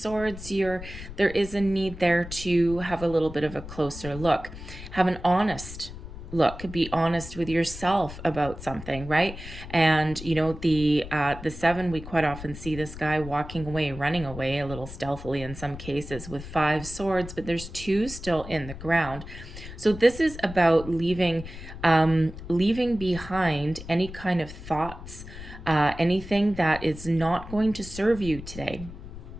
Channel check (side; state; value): left; noise; rumble, 12 dB below the sound